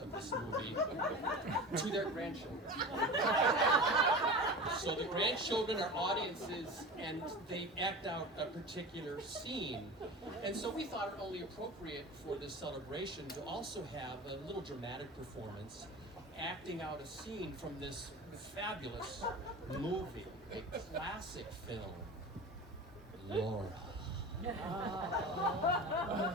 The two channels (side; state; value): both; normal; correlation 0.32